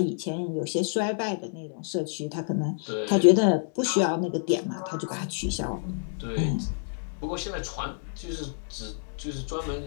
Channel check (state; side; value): silent; right; digital silence